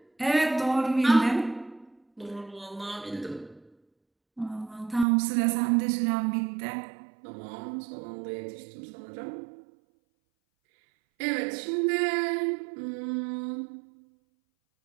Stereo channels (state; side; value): drops out; left; at 5.1 s